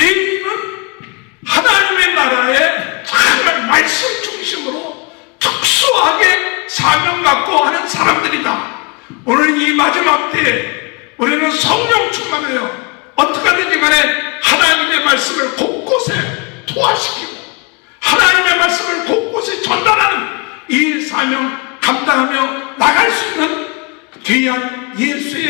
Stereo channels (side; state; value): right; quieter; 30.8 dB